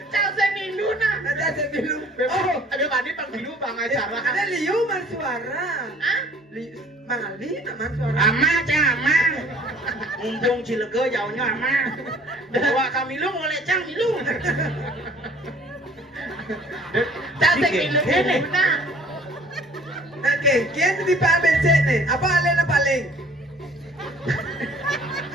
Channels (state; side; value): normal; both; correlation 0.54